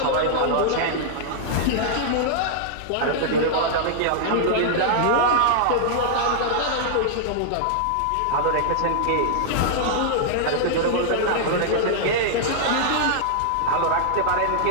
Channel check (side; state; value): both; different; correlation -0.01